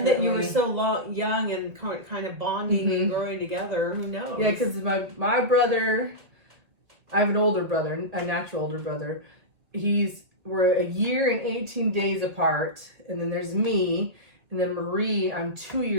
that you were so young and kind of bonding and growing together. Who knows? Yeah, because my brother, I have an older brother, a natural older brother. We're a year and 18 days apart, and then there's me, and then Marie. I'm 2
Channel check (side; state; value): left; late; 1.9 ms